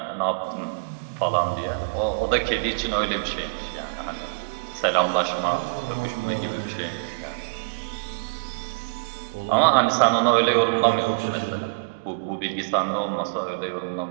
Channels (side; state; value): left; quieter; 38.3 dB